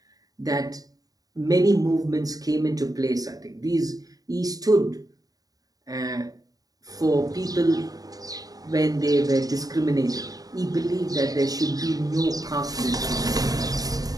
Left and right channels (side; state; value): left; late; 0.18 ms